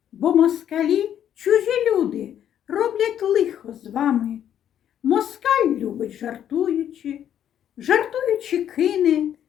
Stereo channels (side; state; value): right; quieter; 10.1 dB